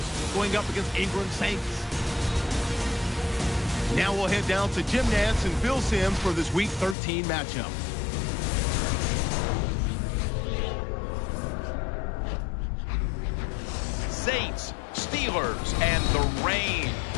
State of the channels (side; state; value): right; drops out; at 7.0 s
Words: going up against Ingram Saints. Now we'll head down to Jim Nantz and Phil Simms for this Week 13 matchup. Saints, Steelers, and the rain